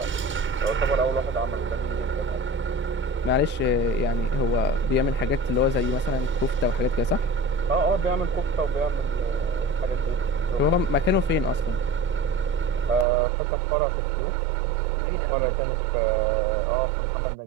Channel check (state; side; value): drops out; left; at 13.1 s